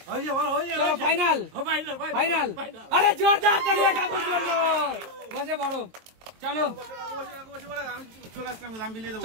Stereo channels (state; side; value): late; left; 22 ms